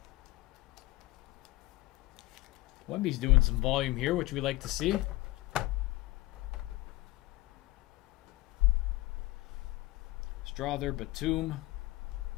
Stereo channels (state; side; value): quieter; right; 19.0 dB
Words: Wemby's doing some volume here, which we like to see. Strother, Batum.